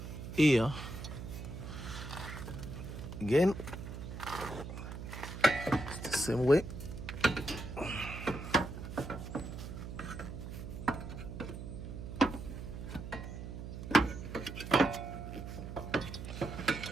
here again. It's the same way.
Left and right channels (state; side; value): noise; right; hum, 8 dB below the sound